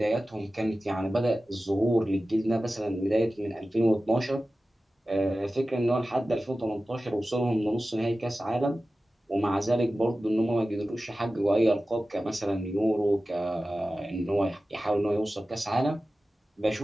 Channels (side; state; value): both; normal; correlation 0.95